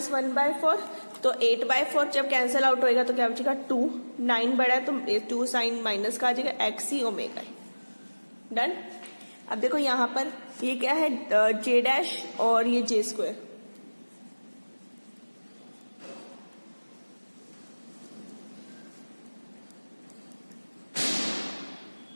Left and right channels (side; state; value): both; inverted; correlation -1.00